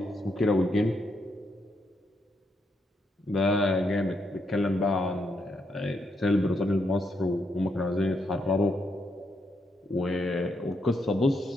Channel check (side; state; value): both; normal; correlation 0.79